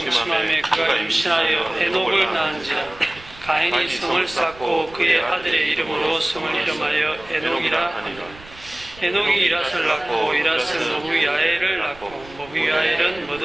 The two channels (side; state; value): right; noise; rumble, 21 dB below the sound